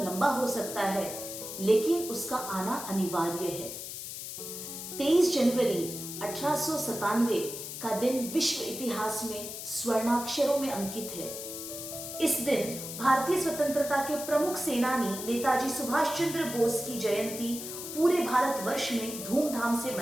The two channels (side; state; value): left; noise; hiss, 8 dB below the sound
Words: हो सकता है, लेकिन उसका आना अनिवार्य है। 23 जनवरी 1897 का दिन विश्व इतिहास में स्वर्णाक्षरों में अंकित है। इस दिन भारतीय स्वतंत्रता के प्रमुख सेनानी नेताजी सुभाष चंद्र बोस की जयंती पूरे भारतवर्ष में धूमधाम से